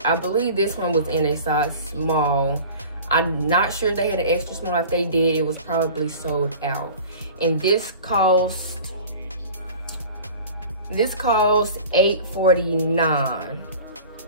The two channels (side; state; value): both; inverted; correlation -0.41